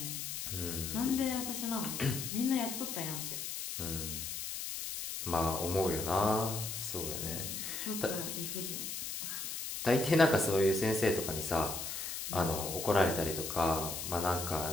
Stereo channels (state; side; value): noise; left; hiss, 5 dB below the sound